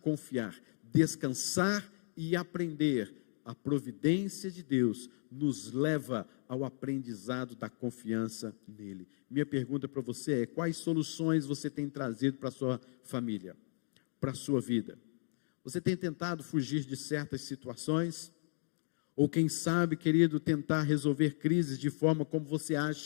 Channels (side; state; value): right; silent; 54 dB below the other